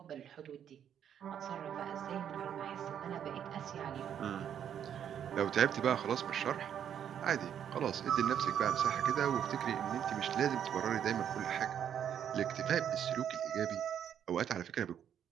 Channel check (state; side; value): quieter; left; 9.2 dB